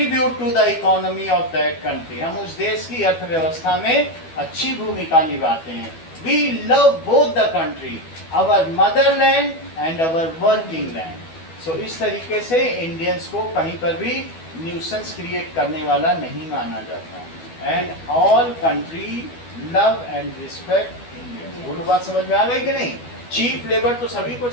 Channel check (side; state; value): right; late; 12 ms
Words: to the economy of that country. हम उस देश की अर्थव्यवस्था में अच्छी भूमिका निभाते हैं. We love both the country, our motherland and our working land. So इस तरीके से इंडियंस को कहीं पर भी न्यूसेंस क्रिएट करने वाला नहीं माना जाता. And all country love and respect Indians. वो बात समझ में आ गई कि नहीं? चीप लेबर तो सभी को